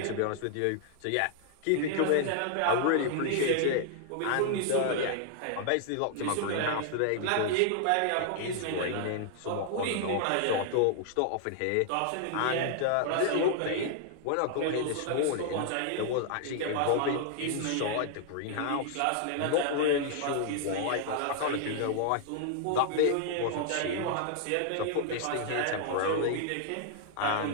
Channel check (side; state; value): both; different; correlation -0.01